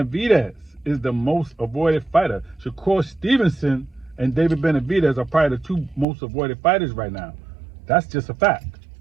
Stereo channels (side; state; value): left; drops out; at 6.1 s